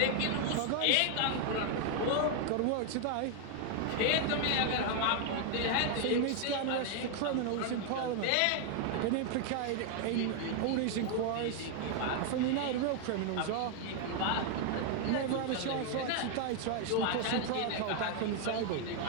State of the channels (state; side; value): different; both; correlation 0.00